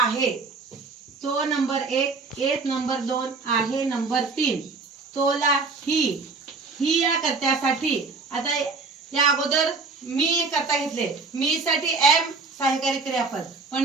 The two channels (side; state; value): left; quieter; 4.2 dB